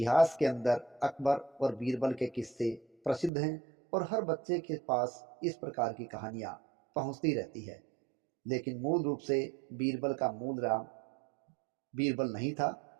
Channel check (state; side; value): drops out; left; at 3.3 s